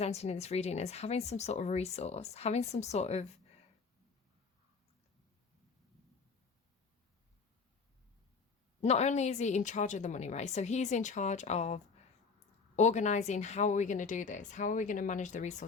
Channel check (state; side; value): quieter; right; 4.9 dB